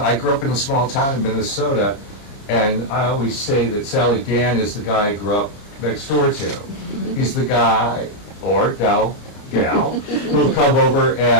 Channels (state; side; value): late; right; 29 ms